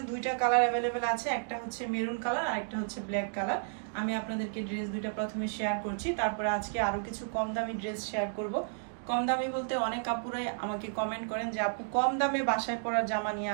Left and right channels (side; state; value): left; silent; digital silence